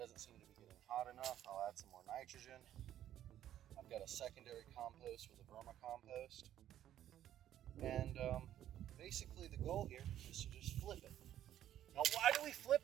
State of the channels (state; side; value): quieter; left; 11.6 dB